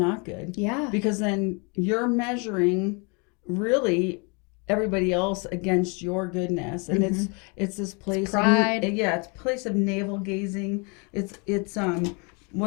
good. Yeah. Because then you're measuring really everybody else against your goodness. And it's this place pride. it's a place of navel gazing. It's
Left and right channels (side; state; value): right; quieter; 32.8 dB